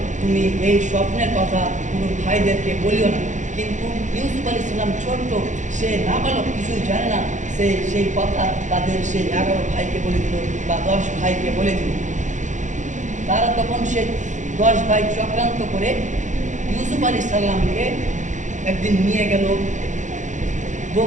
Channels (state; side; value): late; left; 0.35 ms